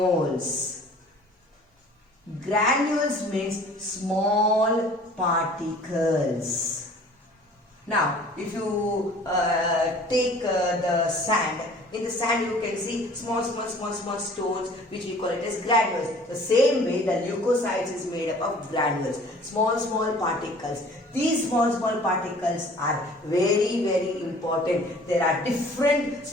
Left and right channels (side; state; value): both; normal; correlation 0.50